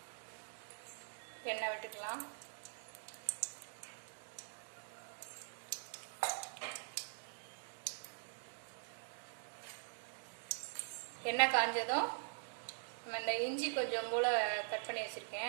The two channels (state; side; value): silent; left; digital silence